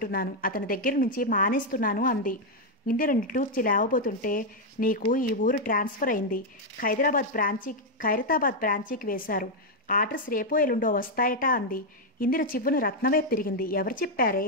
అతని దగ్గర నుంచి మానేస్తున్నాను అంది. ఇందిర నిట్టూర్చి లేవబోతుంటే, నీకు ఈ ఊరు ట్రాన్స్ఫర్ అయింది. ఖైరతాబాద్ బ్రాంచీకి వేశారు. ఆర్డర్స్ రేపో ఎల్లుండో వస్తాయట అంది. ఇందిర చివ్వును రత్నవైపు తిరిగింది. ఎవరు చెప్పారే?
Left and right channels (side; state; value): both; normal; correlation 0.00